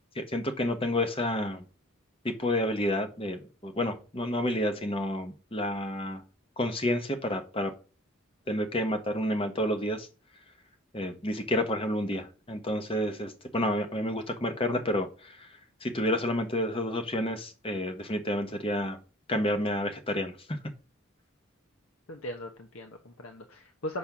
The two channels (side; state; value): both; normal; correlation 0.47